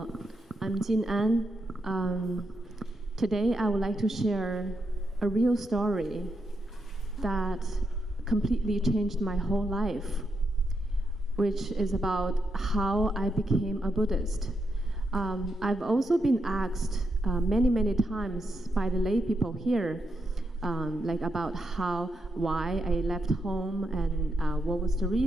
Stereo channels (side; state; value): both; normal; correlation 0.83